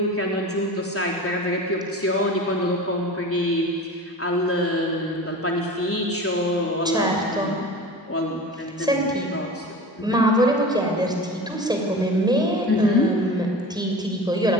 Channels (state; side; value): normal; both; correlation 0.35